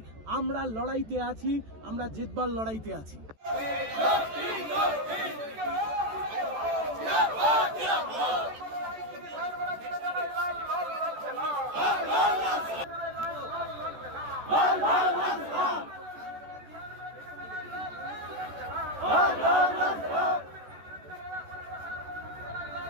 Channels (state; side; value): late; left; 14 ms